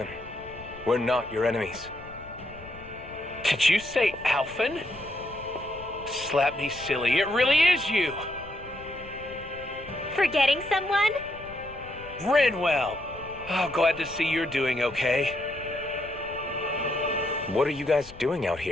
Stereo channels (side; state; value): left; noise; rumble, 19 dB below the sound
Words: We're not your enemies. Did you say Alphen? Slap me silly, it really is you! Forgetting someone? Rinwell! Oh, glad to see you're doing okay. What are you guys doing out